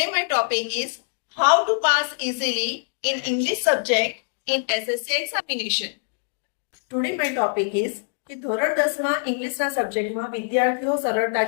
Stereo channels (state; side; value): silent; right; digital silence